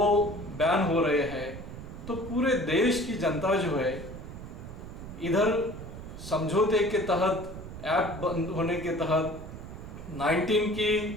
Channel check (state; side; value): noise; right; rumble, 11 dB below the sound